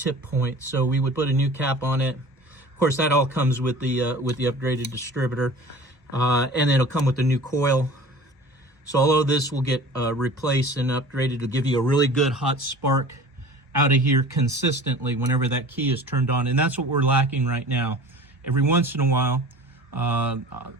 point. So we would put a new cap on it. Of course, that all comes with the upgraded distributor, and it'll come with the new coil. So all of this will get replaced and upgraded to give you a really good hot spark out of here consistently whenever that key is turned on. And that's what we're lacking right now. Every once in a while,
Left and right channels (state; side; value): normal; both; correlation 0.42